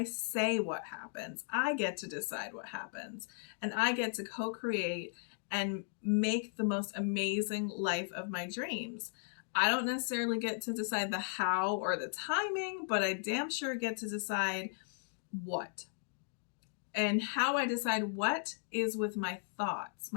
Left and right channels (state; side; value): silent; right; digital silence